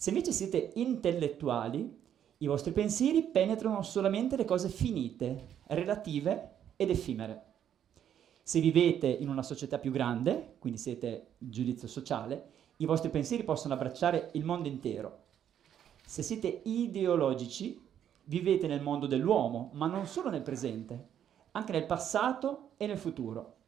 invece siete intellettuali, I vostri pensieri penetrano solamente le cose finite, relative ed effimere. Se vivete in una società più grande, quindi siete giudizio sociale, i vostri pensieri possono abbracciare il mondo intero. Se siete ideologici, vivete nel mondo dell'uomo, ma non solo nel presente, anche nel passato e nel futuro.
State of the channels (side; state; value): left; quieter; 9.7 dB